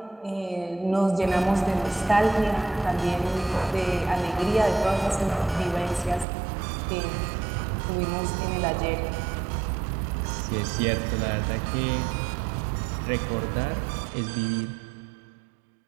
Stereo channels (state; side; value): drops out; left; at 6.2 s